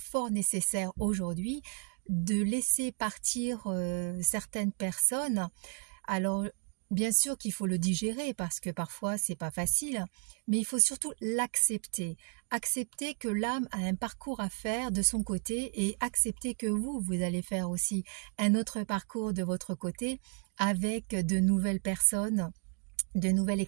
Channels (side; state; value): left; quieter; 39.0 dB